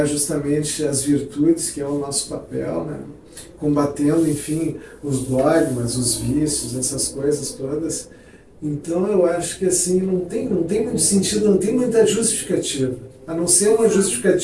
justamente as virtudes, que é o nosso papel, né? Combatendo, enfim, os dogmas, os vícios, essas coisas todas. Então eu acho que assim, não tem muito sentido, não tem muita justificativa, a não ser uma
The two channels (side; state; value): both; identical; correlation 1.00